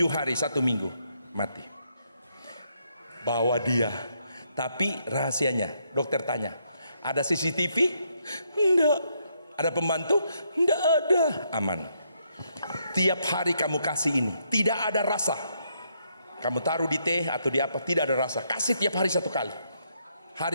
hari 1 minggu mati. Bawa dia. Tapi rahasianya, dokter tanya, ada CCTV? Enggak. Ada pembantu? Enggak ada. Aman. Tiap hari kamu kasih ini, tidak ada rasa. Kamu taruh di teh atau di apa, tidak ada rasa. Kasih tiap hari 1 kali.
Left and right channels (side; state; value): both; inverted; correlation -0.75